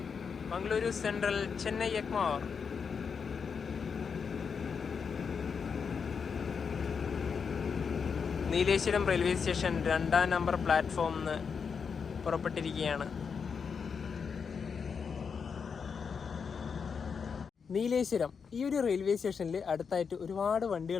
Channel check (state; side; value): quieter; right; 6.1 dB